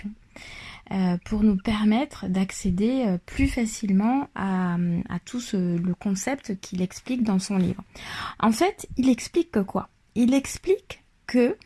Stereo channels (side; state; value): both; identical; correlation 1.00